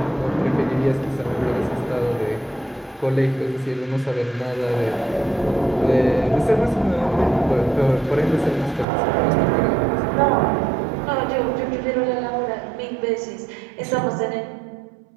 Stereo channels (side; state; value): left; drops out; at 8.8 s